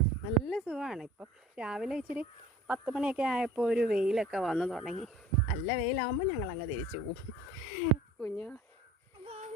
നല്ല സുഖമാണ്. ഇപ്പം രാവിലെ ഇച്ചിരി 10 മണിയൊക്കെ ആയപ്പോൾ ഒരു വെയിലൊക്കെ വന്നു തുടങ്ങി. നല്ല വെയിലാകുമ്പോൾ ഞങ്ങളങ്ങ് തിരിച്ചു പോവും. കുഞ്ഞു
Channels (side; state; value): both; normal; correlation 0.46